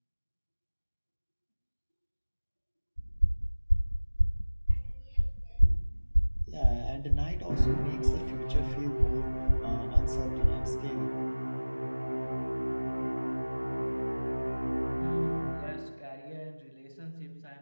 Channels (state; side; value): inverted; both; correlation -1.00